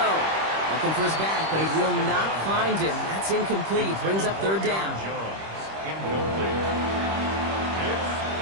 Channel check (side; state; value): left; late; 26 ms